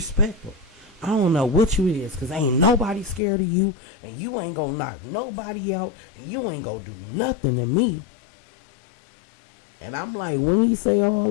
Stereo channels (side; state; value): right; drops out; at 3.2 s